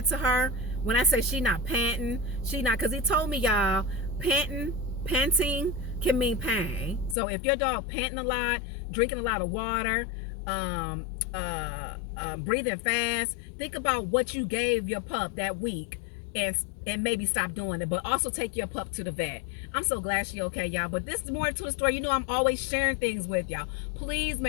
to her, when I say she not panting, because he told me, y'all, panting can mean pain. So if your dog panting a lot, drinking a lot of water, breathing fast, think about what you gave your pup that week, and maybe stop doing it. But also take your pup to the vet. I'm so glad she okay, y'all. But this is more to the story. You know, I'm always sharing things with y'all. Please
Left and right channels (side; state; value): right; drops out; at 7.2 s